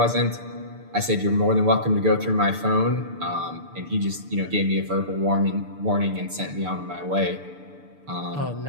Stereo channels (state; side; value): late; left; 6.8 ms